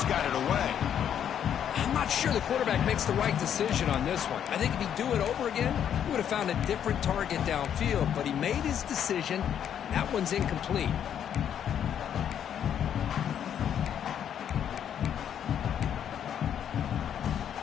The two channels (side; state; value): right; quieter; 9.2 dB